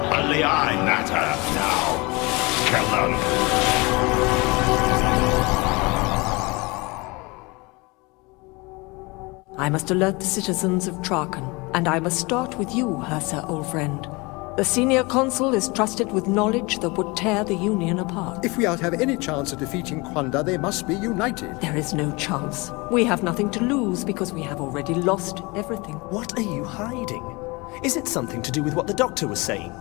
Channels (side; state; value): right; quieter; 25.8 dB